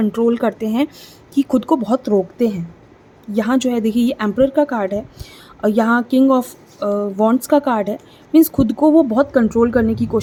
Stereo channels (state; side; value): identical; both; correlation 1.00